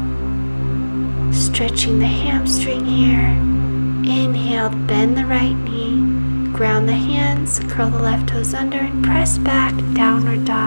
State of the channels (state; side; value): inverted; both; correlation -1.00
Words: Stretching the hamstring here. Inhale, bend the right knee. Ground the hands, curl the left toes under and press back, downward